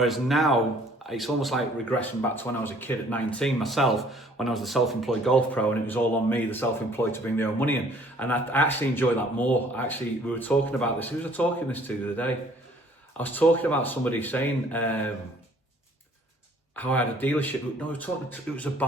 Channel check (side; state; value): both; normal; correlation 0.57